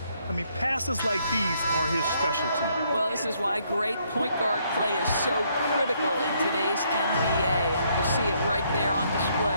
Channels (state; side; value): inverted; both; correlation -0.70